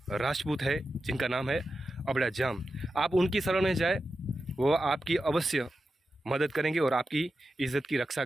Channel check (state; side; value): normal; both; correlation 0.91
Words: राजपूत है जिनका नाम है अबड़ाजाम, आप उनकी शरण में जाए, वो आपकी अवश्य मदद करेंगे और आपकी इज़्ज़त की रक्षा